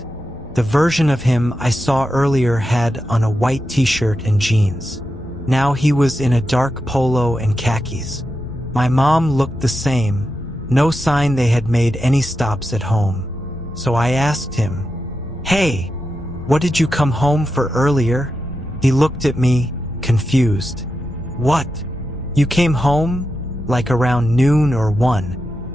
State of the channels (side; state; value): both; normal; correlation 0.88